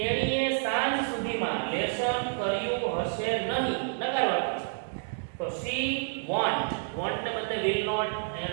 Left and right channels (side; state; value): left; silent; digital silence